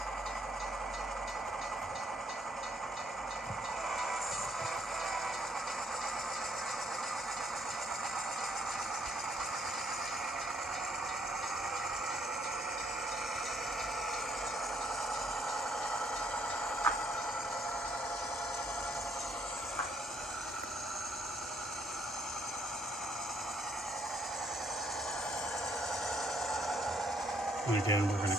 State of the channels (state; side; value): normal; both; correlation 0.69